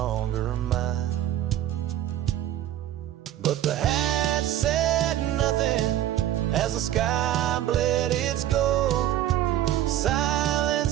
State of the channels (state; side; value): quieter; left; 12.6 dB